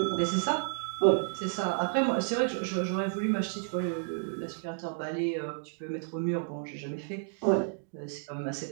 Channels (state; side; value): silent; left; digital silence